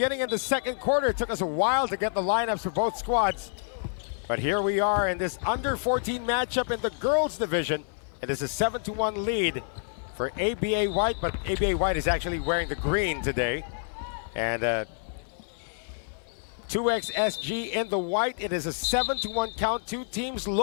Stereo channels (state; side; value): silent; right; 58 dB below the other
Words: in the second quarter. It took us a while to get the lineups for both squads. But here we are in this under 14 matchup in the girls division. It is a 7-1 lead for ABA White, but ABA White is actually wearing the green today. And 2XSG in the white. It is a 7-1 count. Two teams